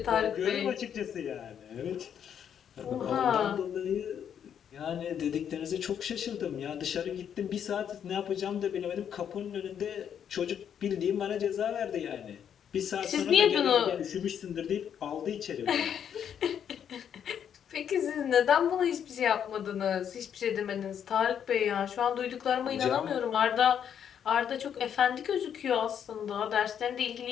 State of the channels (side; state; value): right; quieter; 8.6 dB